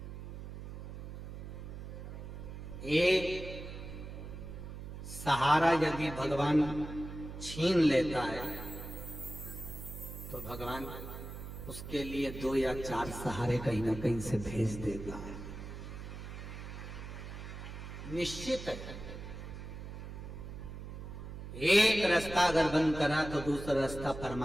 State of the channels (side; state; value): right; noise; hum, 9 dB below the sound